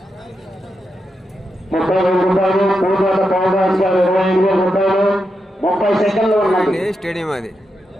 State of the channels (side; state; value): both; normal; correlation 0.86